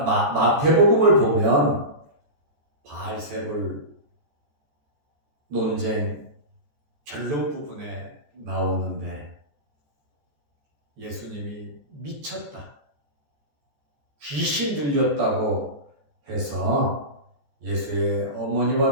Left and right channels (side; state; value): left; late; 14 ms